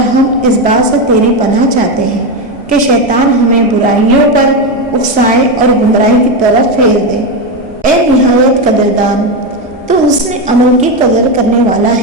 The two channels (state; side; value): normal; both; correlation 0.11